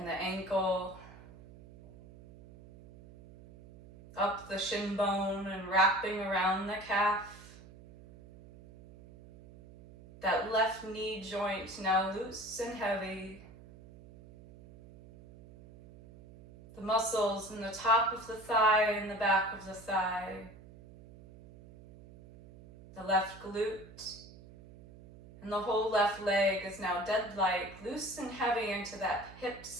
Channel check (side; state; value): right; noise; hum, 20 dB below the sound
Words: the ankle, up the shin bone and wrapping around the calf. That left knee joint now loose and heavy. The muscles in the top of the thigh and the back of the thigh. The left glute and the whole left leg is now dead-like, loose and heavy into that hip